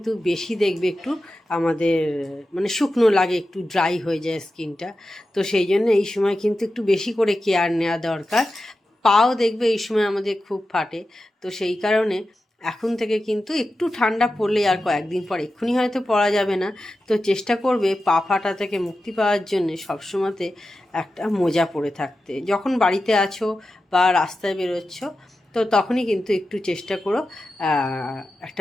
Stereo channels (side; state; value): both; normal; correlation 0.92